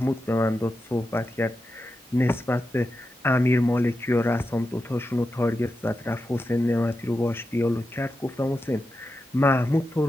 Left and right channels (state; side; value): normal; both; correlation 0.89